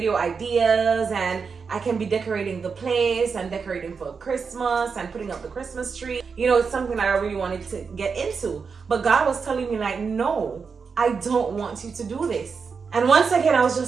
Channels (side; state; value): left; quieter; 5.5 dB